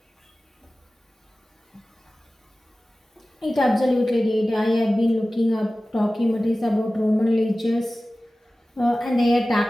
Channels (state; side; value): normal; both; correlation 0.96